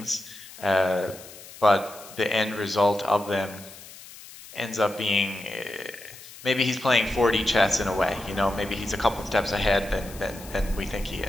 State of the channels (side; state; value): left; noise; hiss, 17 dB below the sound